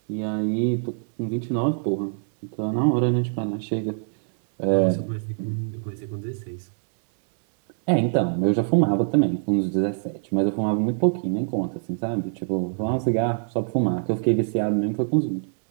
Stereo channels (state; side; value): silent; left; 62 dB below the other